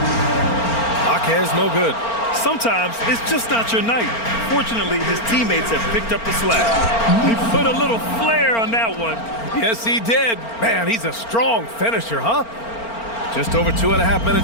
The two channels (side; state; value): right; late; 4.4 ms